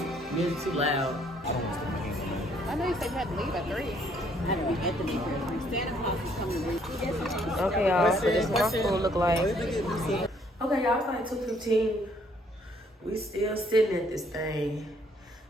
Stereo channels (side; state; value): both; normal; correlation 0.65